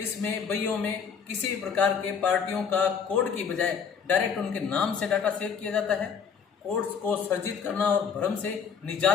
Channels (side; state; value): right; quieter; 6.6 dB